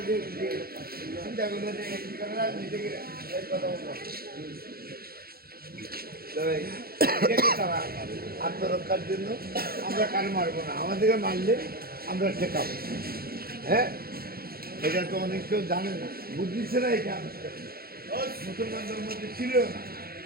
যে চিন্তা করলো যে নিজেকে কথা বলবো তারা আত্মরক্ষার জন্য আমরা কারো মারবো না, আমাদেরকে মারলে আমরা ঠেকাবো। হ্যাঁ, এটা তো অনেক কেউ জানে না, বুঝছে না। এটা মুসলমানদের মধ্যে ছিল না।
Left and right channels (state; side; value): late; left; 0.44 ms